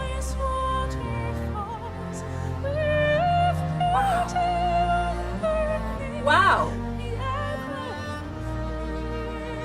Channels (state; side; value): identical; both; correlation 1.00